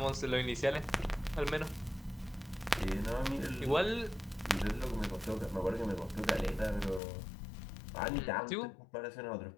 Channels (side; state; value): right; drops out; at 7.0 s